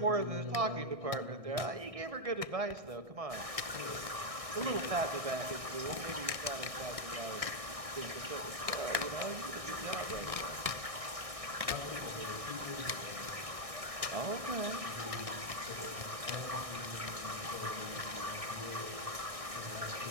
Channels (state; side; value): late; left; 1.6 ms